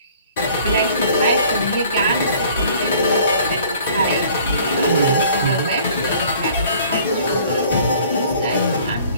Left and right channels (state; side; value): inverted; both; correlation -0.54